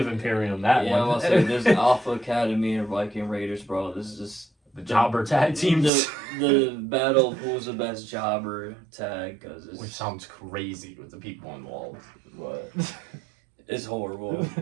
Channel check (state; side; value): drops out; left; at 5.9 s